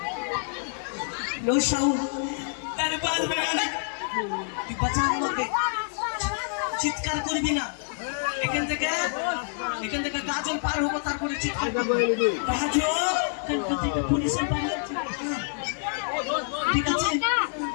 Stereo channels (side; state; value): right; silent; digital silence